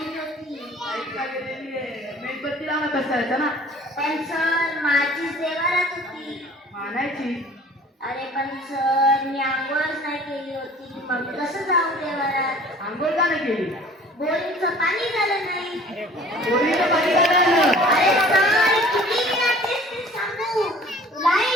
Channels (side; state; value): both; normal; correlation 0.49